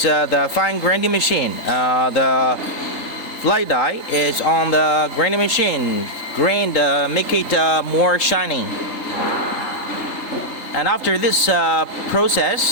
the fine grinding machine. The fly die is on the grinding machine. Grind, make it more shining. And after this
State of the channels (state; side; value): late; right; 3.7 ms